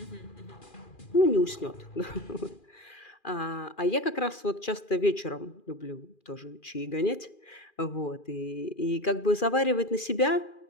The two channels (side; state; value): right; late; 2.4 ms